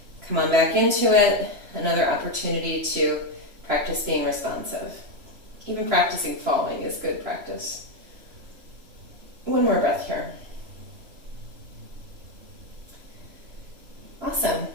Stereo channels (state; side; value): late; left; 3.0 ms